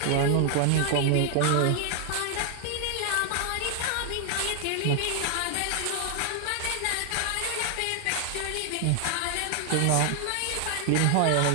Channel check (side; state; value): both; different; correlation 0.00